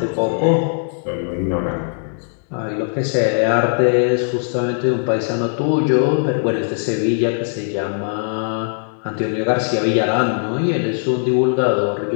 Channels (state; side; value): silent; right; digital silence